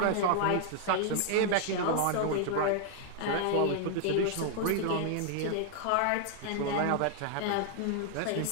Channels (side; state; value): both; different; correlation 0.00